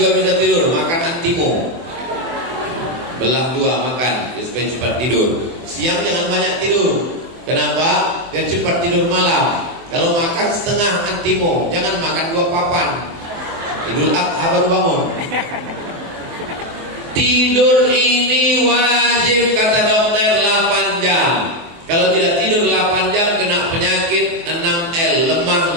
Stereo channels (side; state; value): left; late; 24 ms